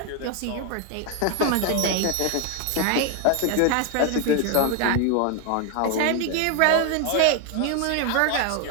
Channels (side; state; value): both; different; correlation 0.01